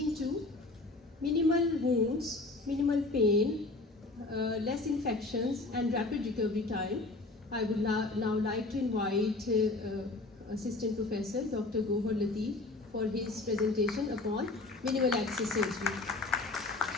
to minimal wounds, minimal pain, less infections, and rapid recovery time. I would now like to invite Assistant Professor Dr. Gohar Latif for his presentation upon minimal access surgery.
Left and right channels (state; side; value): quieter; right; 3.2 dB